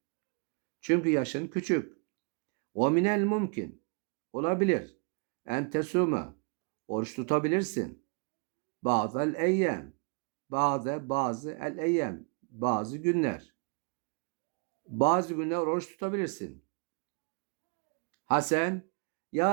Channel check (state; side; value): quieter; left; 35.8 dB